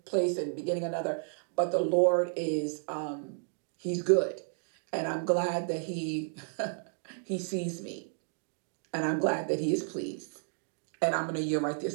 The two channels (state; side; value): silent; left; digital silence